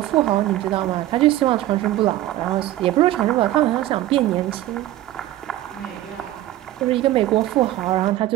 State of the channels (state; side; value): quieter; left; 14.7 dB